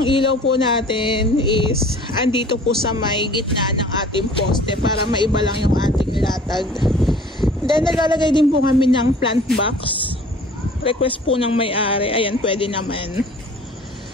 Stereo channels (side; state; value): both; normal; correlation 0.48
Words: ilaw po natin is andito po sa may gitna ng ating poste para maiba lang yung ating latag. Then naglalagay din po kami ng plant box. Request po ng may-ari. Ayan, pwede naman.